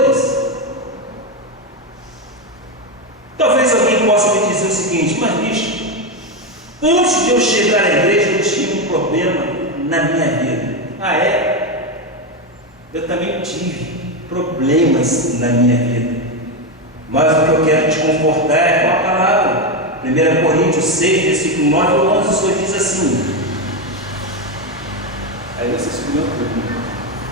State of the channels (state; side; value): normal; both; correlation 0.10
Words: Talvez alguém possa me dizer o seguinte: mas bicho, antes de eu chegar à igreja eu tinha um problema na minha vida. Ah, é? Eu também tive problemas na minha vida, mas o que eu quero te confortar é com a palavra. 1 Coríntios 6, versículo 9 ou 11, o Senhor diz assim. Aí você se pergunta: